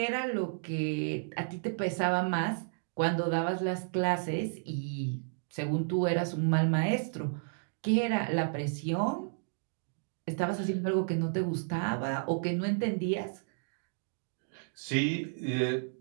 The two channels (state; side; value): silent; left; digital silence